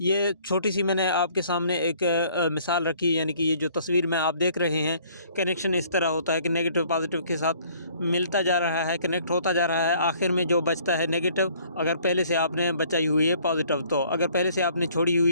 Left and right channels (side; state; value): both; inverted; correlation -0.58